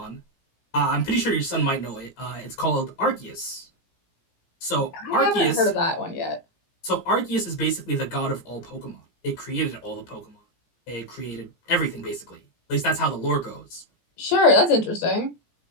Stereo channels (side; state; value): right; late; 17 ms